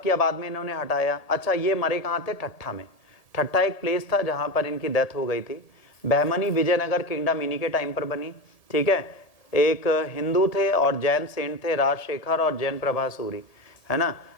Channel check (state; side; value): late; right; 1.7 ms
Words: किया, बाद में इन्होंने हटाया। अच्छा, ये मरे कहाँ थे? ठट्ठा में। ठट्ठा एक प्लेस था जहां पर इनकी डेथ हो गई थी। बहमनी विजयनगर किंगडम इन्हीं के टाइम पर बनी, ठीक है। एक हिंदू थे और जैन सेंट थे, राजशेखर और जैन प्रभा सूरी, है ना।